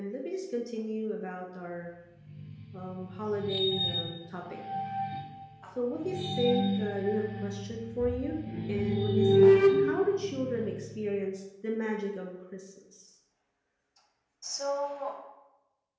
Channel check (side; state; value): both; identical; correlation 1.00